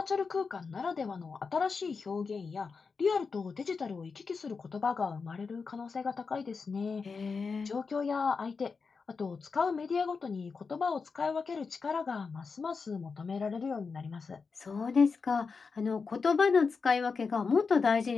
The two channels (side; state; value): right; quieter; 5.0 dB